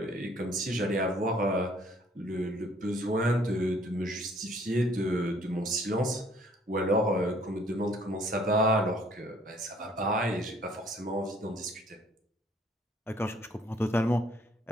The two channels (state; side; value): normal; both; correlation 0.60